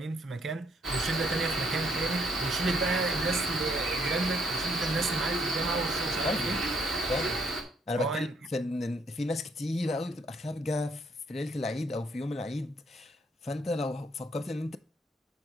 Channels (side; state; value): both; normal; correlation 0.69